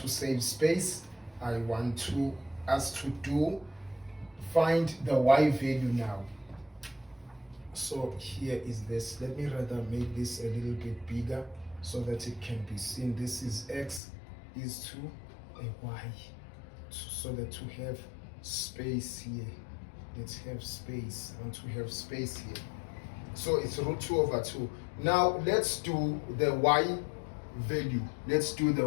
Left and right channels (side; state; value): right; drops out; at 14.0 s